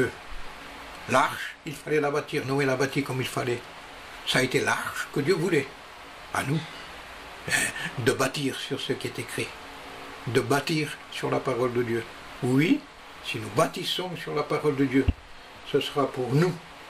L'arche, il fallait la bâtir. Noé l'a bâtie comme il fallait. Ça a été l'arche que Dieu voulait. À nous, de bâtir sur ce qui est écrit. De bâtir sur la parole de Dieu. Oui, si nous bâtissons sur la parole de Dieu, ce sera pour nous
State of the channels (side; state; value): both; identical; correlation 1.00